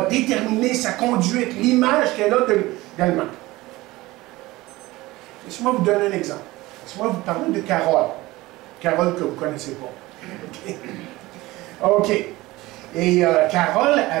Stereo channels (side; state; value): left; quieter; 19.4 dB